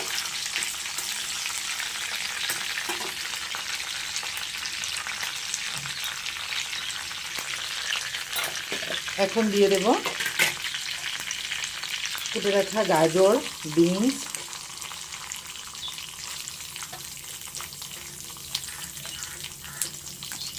এখন দিয়ে দেব কেটে রাখা গাজর, বিনস,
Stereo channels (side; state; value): both; identical; correlation 1.00